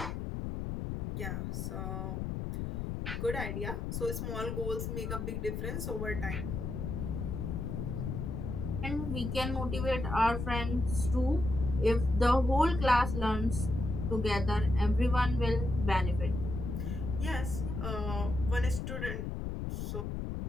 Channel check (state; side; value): noise; left; rumble, 3 dB below the sound